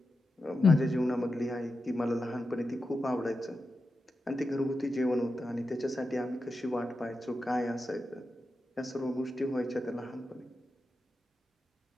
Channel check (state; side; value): normal; both; correlation 0.90